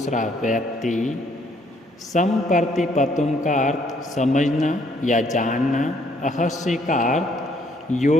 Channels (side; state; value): both; normal; correlation 0.67